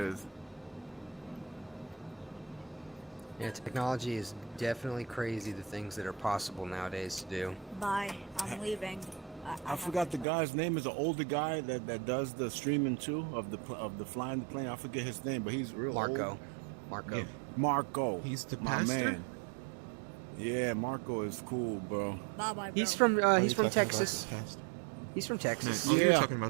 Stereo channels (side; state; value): left; drops out; at 10.2 s